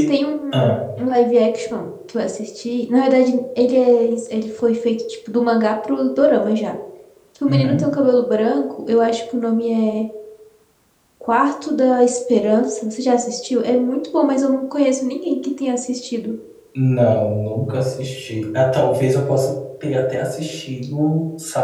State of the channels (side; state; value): both; identical; correlation 1.00